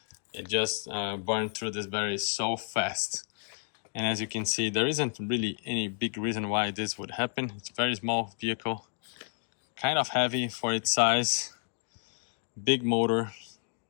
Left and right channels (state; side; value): silent; right; digital silence